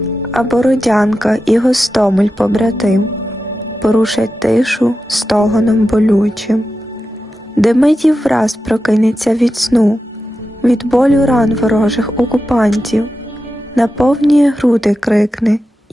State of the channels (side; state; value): both; normal; correlation 0.91